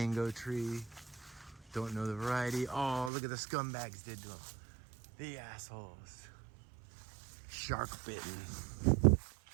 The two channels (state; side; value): drops out; left; at 3.1 s